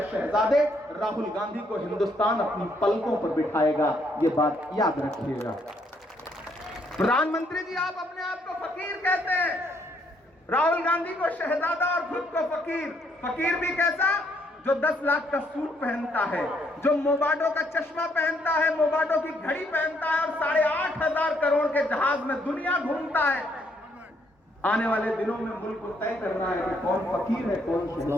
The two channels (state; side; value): normal; both; correlation 0.71